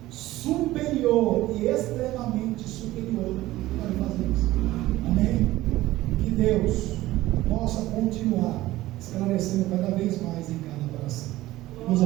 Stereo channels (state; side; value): quieter; left; 16.6 dB